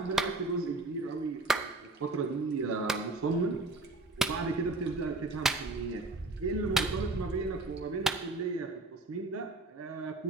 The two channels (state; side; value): quieter; left; 3.2 dB